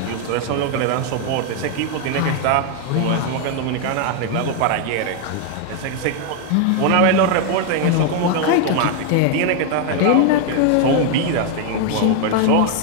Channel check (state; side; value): different; both; correlation 0.01